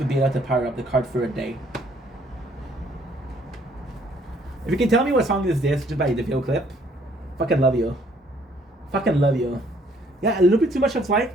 be enough to power up the cart for a day. If you can tell me what song is this just by the video clip, fucking love you. Fucking love you. Yeah, a little bit too much of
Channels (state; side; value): normal; both; correlation 0.63